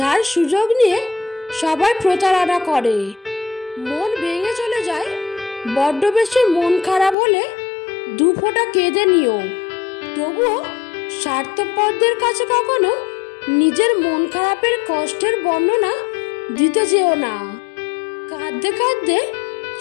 সুযোগ নিয়ে সবাই প্রতারণা করে। মন ভেঙে চলে যায়, বড্ড বেশি মন খারাপ হলে দু ফোঁটা কেঁদে নিও। তবুও স্বার্থপরদের কাছে কখনো নিজের মন খারাপের কষ্টের বর্ণনা দিতে যেও না। কাঁদতে কাঁদতে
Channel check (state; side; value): drops out; right; at 7.2 s